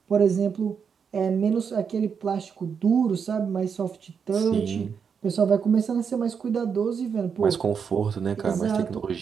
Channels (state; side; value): quieter; left; 6.6 dB